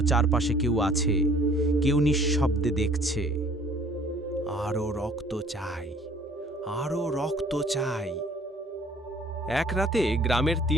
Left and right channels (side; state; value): both; normal; correlation 0.55